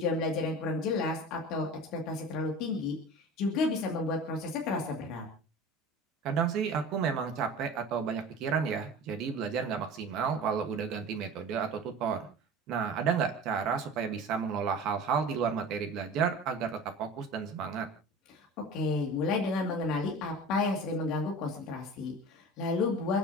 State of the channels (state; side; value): normal; both; correlation 0.37